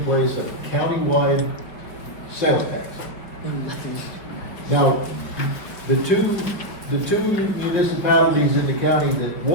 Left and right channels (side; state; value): right; late; 5.4 ms